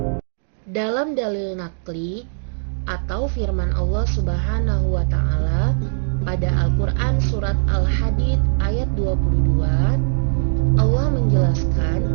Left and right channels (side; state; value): left; silent; digital silence